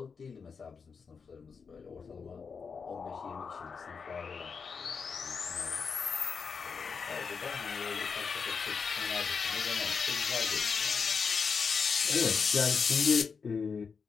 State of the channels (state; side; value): quieter; right; 5.6 dB